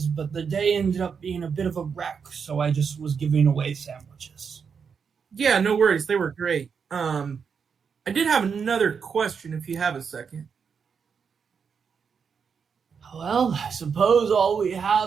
but the day ended up being a bit of a wreck, so I just was giving away sandwiches. Yeah, no worries. They were great. I did have another question if you have a second. Well, I suppose all we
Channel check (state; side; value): quieter; left; 6.3 dB